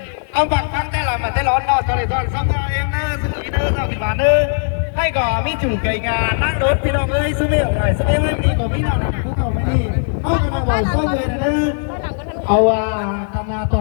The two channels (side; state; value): right; silent; digital silence